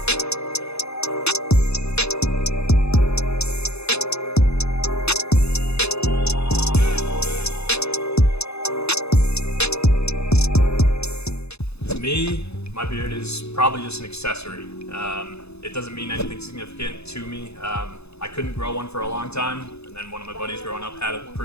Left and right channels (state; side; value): late; right; 0.79 ms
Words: To me, my beard is probably just an accessory. It doesn't mean anything significant to me. I couldn't grow one for a long time, and then one of my buddies growing up had a